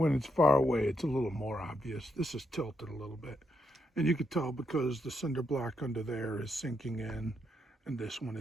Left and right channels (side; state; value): both; normal; correlation 0.78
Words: it's far away, it's a little more obvious. This is tilted a little bit. And you could tell because the cinder block under there is sinking in and this one